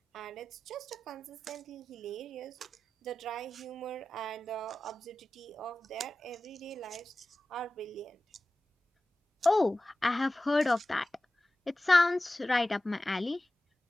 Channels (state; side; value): normal; both; correlation 0.95